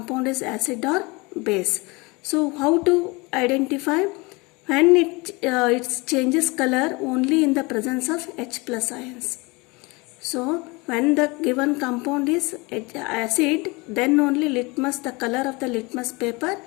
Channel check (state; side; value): quieter; right; 25.9 dB